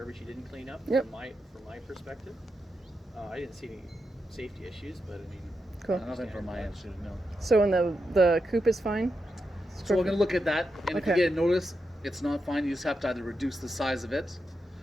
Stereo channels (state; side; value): normal; both; correlation 0.86